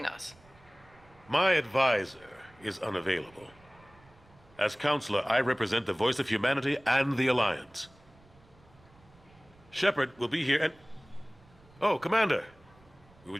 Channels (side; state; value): right; noise; rumble, 27 dB below the sound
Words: us. My advisor is unavailable. As counselor, I represent the voice of humanity and the Alliance. Shepard will be here and... Oh, Commander. We were